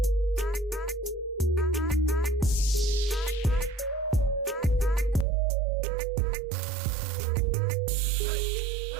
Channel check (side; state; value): left; drops out; at 5.2 s